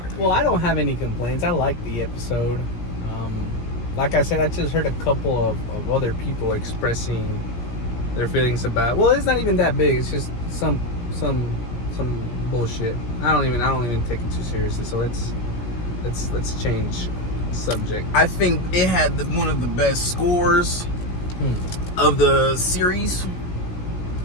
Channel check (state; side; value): late; right; 17 ms